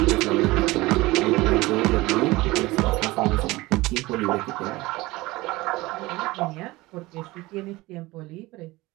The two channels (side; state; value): left; quieter; 20.4 dB